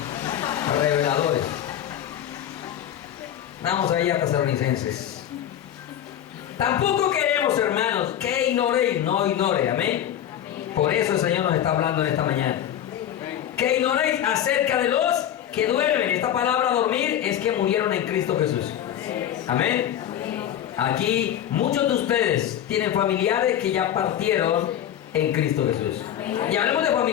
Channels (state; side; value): quieter; right; 10.7 dB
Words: reveladores. Vamos ahí a Tesalonicenses. Tampoco queremos, hermanos, que ignoréis, no ignore, amén. Por eso el Señor nos está hablando en esta mañana. Que ignoréis acerca de los que duermen. Esta palabra dormir es que murieron en Cristo Jesús. Amén. Aquí muchos de ustedes tienen familiares que ya partieron en Cristo Jesús. Y hablemos de